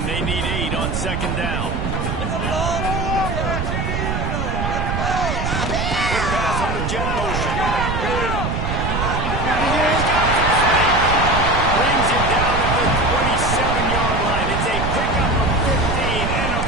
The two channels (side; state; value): right; noise; rumble, 2 dB below the sound